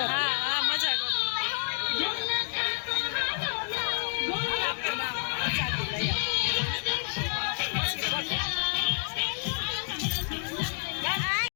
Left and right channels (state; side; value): silent; right; digital silence